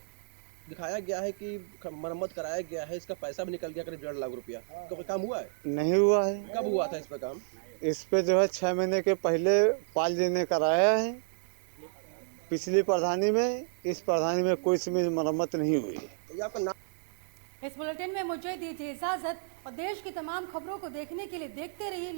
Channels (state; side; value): silent; left; 57 dB below the other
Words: दिखाया गया है कि मरम्मत कराया गया है, इसका पैसा भी निकल गया करीब 1.5 लाख रुपया। तो कोई काम हुआ है? नहीं हुआ है। कब हुआ था इस पे काम? इस पे जो है 6 महीने के पहले पाल जी ने कराया है पिछली प्रधानी में। इस प्रधानी में कोई इसमें मरम्मत नहीं हुई है। आपका नाम? इस बुलेटिन में मुझे दीजिए इजाजत और देश की तमाम खबरों को देखने के लिए देखते रहिए